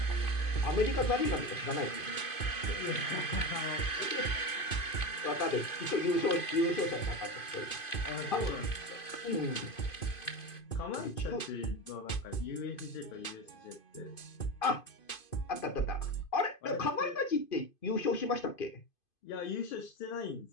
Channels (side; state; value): right; late; 2.5 ms